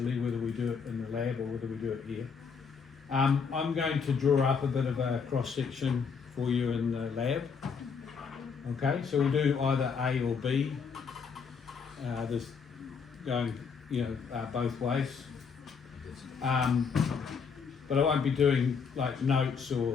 whether we do it in the lab or whether we do it here. I'm going to draw up a bit of a cross section for you in the lab. Okay, so we'll do either A or B. There's going, both ways. But I won't be doing like notes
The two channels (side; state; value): right; quieter; 5.9 dB